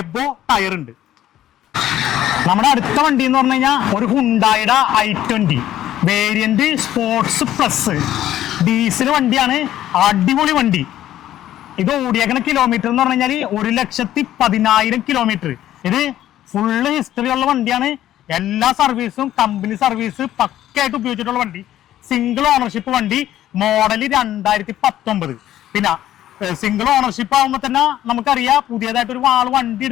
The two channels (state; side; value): quieter; right; 12.7 dB